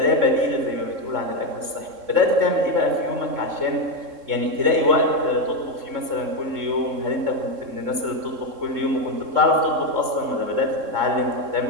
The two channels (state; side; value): late; left; 3.7 ms